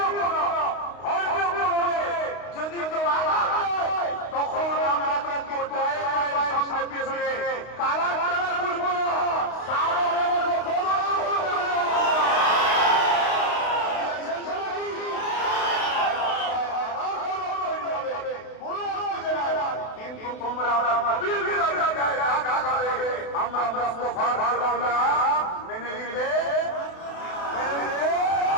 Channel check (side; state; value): right; late; 32 ms